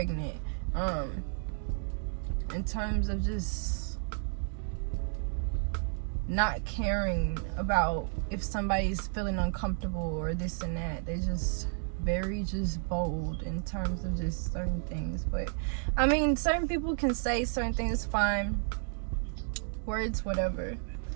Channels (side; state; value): left; silent; 56 dB below the other